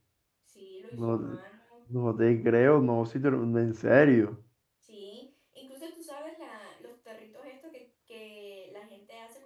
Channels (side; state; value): both; identical; correlation 1.00